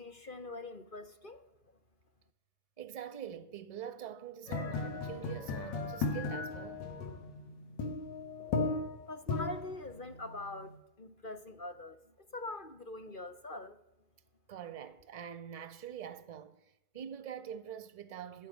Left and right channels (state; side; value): late; right; 1.7 ms